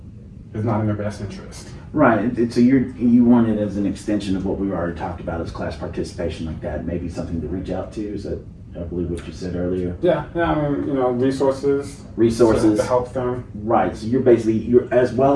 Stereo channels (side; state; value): both; identical; correlation 1.00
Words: is not in their best interest. Right. So you want it as an extension of what we already talked about as class participation, like that, maybe something to reach out to. Is that, I believe, what you said earlier? Yeah. I mean, resources to help them. Right. So you're as